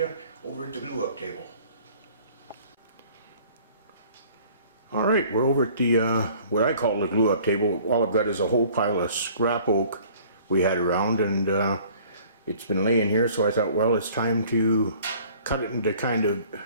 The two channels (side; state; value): both; inverted; correlation -0.52